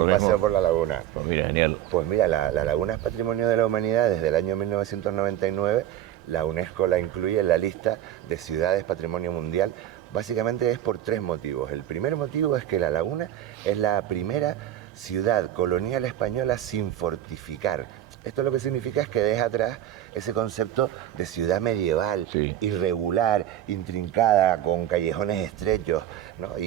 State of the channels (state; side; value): quieter; left; 12.0 dB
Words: paseo por la laguna. Pues mira, genial. Pues mira, la laguna es patrimonio de la humanidad desde el año 1999. La UNESCO la incluye en la lista de ciudades patrimonio mundial. Básicamente es por tres motivos. El primer motivo es que La Laguna es la primera ciudad colonial española sin fortificar. Esto lo que significa es que deja atrás ese concepto de ciudad medieval, irregular, intrincada, con callejones estrechos, ¿no?